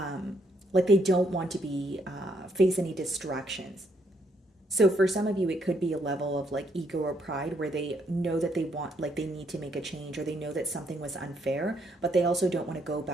they don't want to be, face any distractions. So for some of you, it could be a level of like ego or pride where they know that they want, like they need to make a change, or they know that something was unfair, but they also don't want to go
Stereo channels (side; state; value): both; normal; correlation 0.73